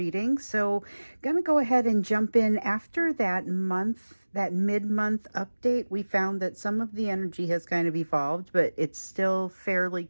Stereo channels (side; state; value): both; inverted; correlation -1.00